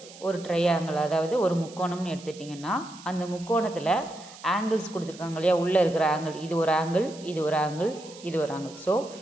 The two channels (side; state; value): right; noise; hiss, 19 dB below the sound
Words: ஒரு ட்ரையாங்கிள், அதாவது ஒரு முக்கோணம்னு எடுத்துட்டிங்கன்னா அந்த முக்கோணத்தில் ஆங்கிள்ஸ் கொடுத்துருக்காங்க இல்லையா, உள்ளே இருக்கிற ஆங்கிள், இது ஒரு ஆங்கிள், இது ஒரு ஆங்கிள், இது ஒரு ஆங்கிள். ஸோ